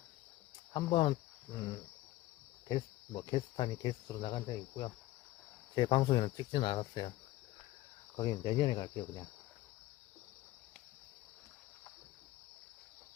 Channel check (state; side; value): quieter; right; 16.6 dB